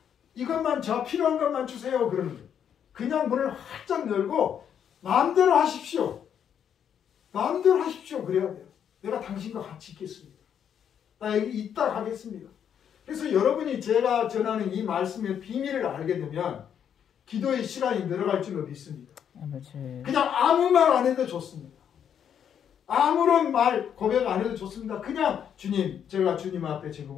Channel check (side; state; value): right; quieter; 8.6 dB